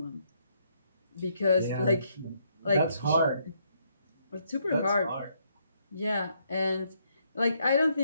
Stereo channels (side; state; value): both; inverted; correlation -0.73